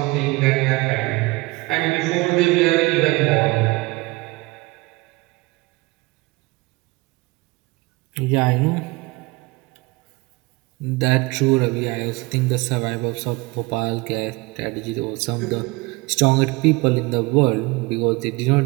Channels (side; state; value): left; quieter; 23.4 dB